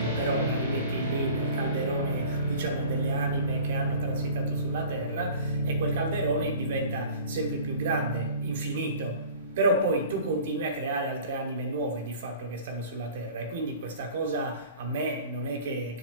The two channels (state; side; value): inverted; both; correlation -0.44